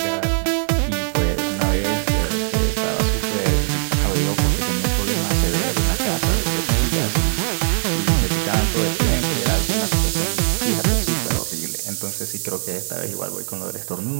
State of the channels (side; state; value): left; silent; digital silence